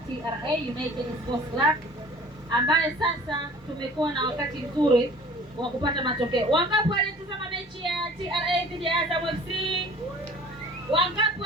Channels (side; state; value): both; normal; correlation 0.47